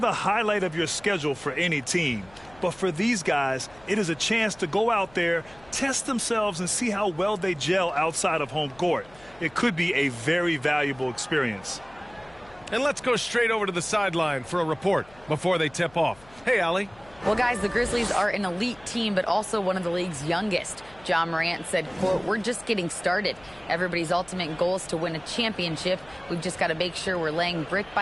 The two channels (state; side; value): noise; left; hum, 25 dB below the sound